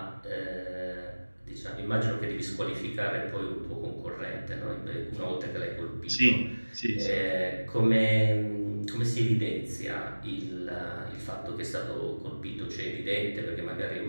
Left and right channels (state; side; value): inverted; both; correlation -1.00